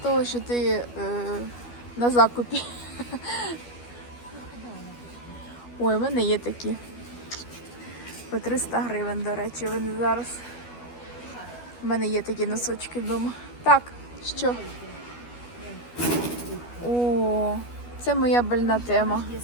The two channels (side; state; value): right; late; 12 ms